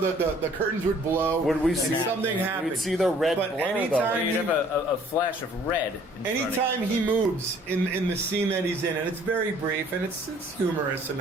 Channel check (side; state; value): both; normal; correlation 0.57